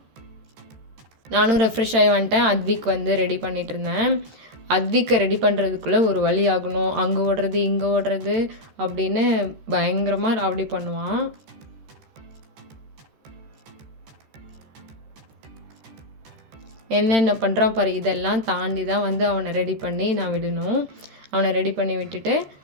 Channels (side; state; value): left; late; 13 ms